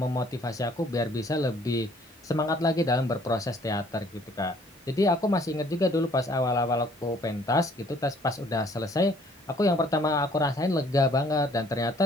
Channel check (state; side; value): normal; both; correlation 0.59